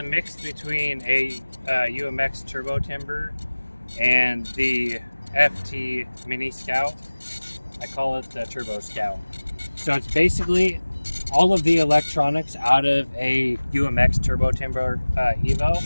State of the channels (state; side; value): inverted; both; correlation -1.00